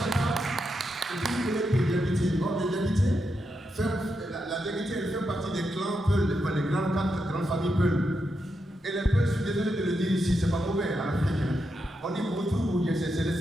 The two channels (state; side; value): normal; both; correlation 0.85